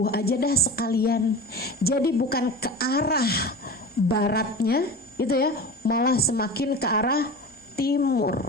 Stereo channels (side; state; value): both; normal; correlation 0.32